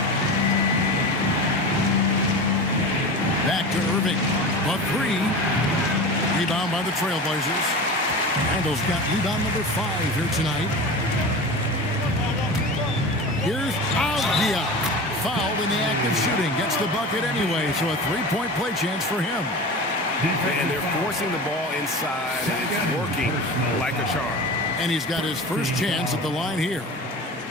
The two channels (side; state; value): both; normal; correlation 0.31